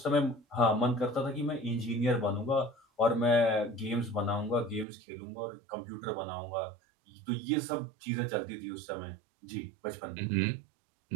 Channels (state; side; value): drops out; left; at 4.9 s